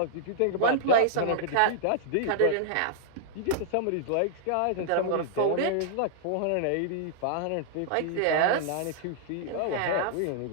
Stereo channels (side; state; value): both; different; correlation -0.01